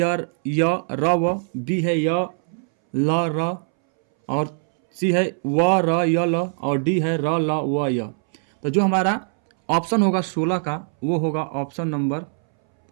र व, बी है य ल र, और सी है व र य ल, और डी है र ल व य। तो जो हमारा ऑप्शन होगा 16 का वो होगा ऑप्शन नंबर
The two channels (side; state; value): left; silent; 63 dB below the other